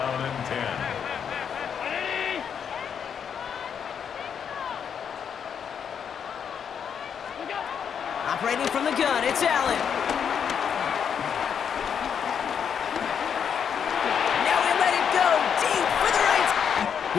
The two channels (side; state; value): right; quieter; 7.6 dB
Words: and 10. Operating from the gun, it's Allen. Now we let it go deep for the right.